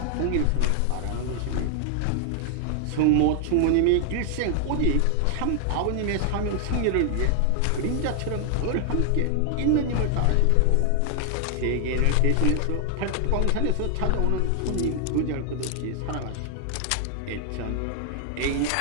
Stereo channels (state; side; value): different; both; correlation 0.00